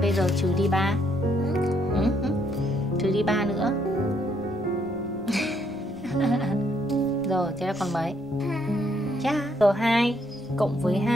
bây giờ trừ đi 3. Trừ đi 3 nữa. Rồi, thế là còn mấy? Chà, rồi 2 cộng với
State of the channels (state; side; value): normal; both; correlation 0.72